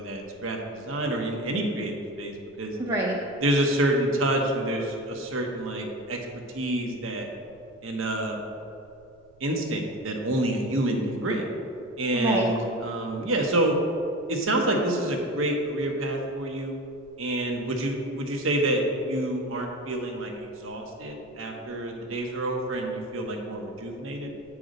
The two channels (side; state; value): right; noise; rumble, 29 dB below the sound